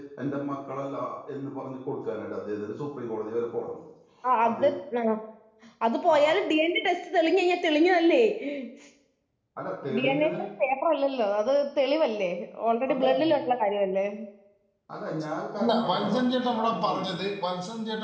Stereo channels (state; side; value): identical; both; correlation 1.00